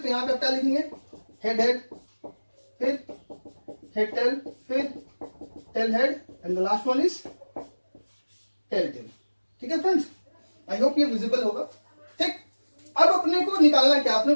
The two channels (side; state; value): both; inverted; correlation -1.00